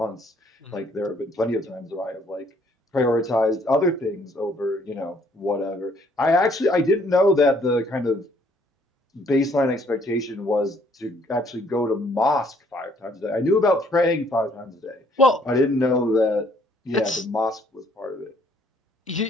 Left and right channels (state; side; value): normal; both; correlation 0.64